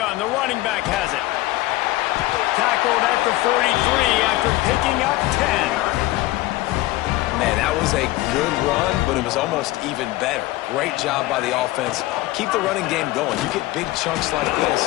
the running back has it. Tackled at the 43 after picking up 10. Man, that was a good run, but it was almost even better. Great job by the offense. Keep the running game going. You get big chunks like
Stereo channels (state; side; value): quieter; right; 18.2 dB